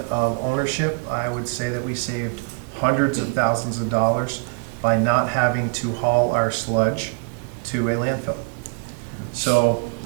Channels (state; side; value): quieter; left; 34.0 dB